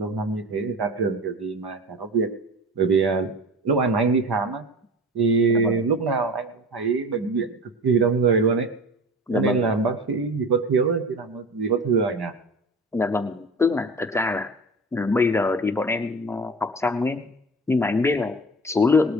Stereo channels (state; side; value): normal; both; correlation 0.35